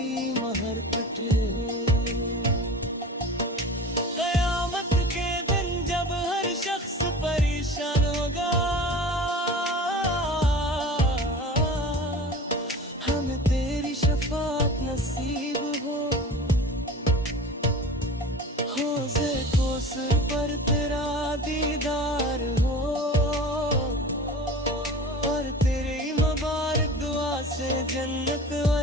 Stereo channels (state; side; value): normal; both; correlation 0.37